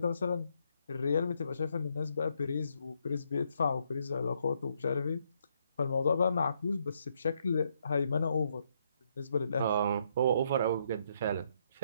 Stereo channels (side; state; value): both; inverted; correlation -0.74